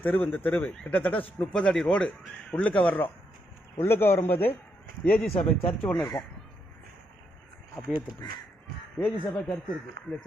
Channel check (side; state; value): both; normal; correlation 0.79